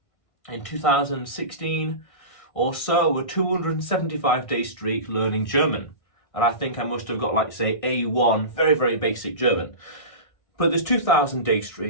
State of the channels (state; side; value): late; right; 1.6 ms